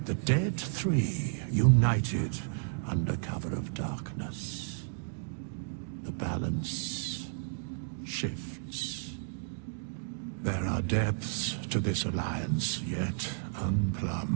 The dead three united under cover of darkness. The balance shifts. There are depths to this alliance yet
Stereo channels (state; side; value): silent; left; digital silence